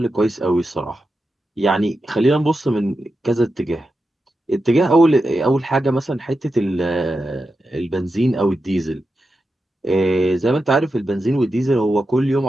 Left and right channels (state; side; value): normal; both; correlation 0.90